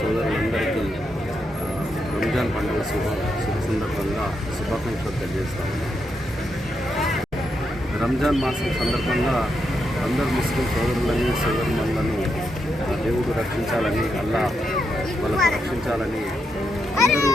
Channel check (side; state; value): both; normal; correlation 0.82